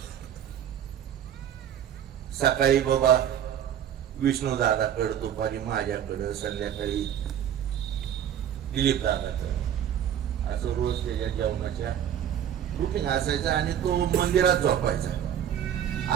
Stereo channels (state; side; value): quieter; left; 10.0 dB